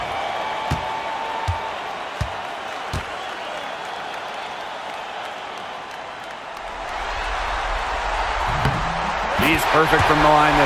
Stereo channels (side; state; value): both; identical; correlation 1.00